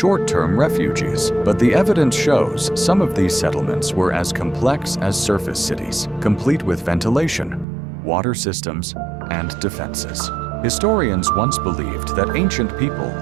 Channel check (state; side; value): drops out; left; at 7.7 s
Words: refuges, but the evidence shows some of these settlements were as complex as surface cities, complete with ventilation, water systems, and defenses. Historians once believed that ancient people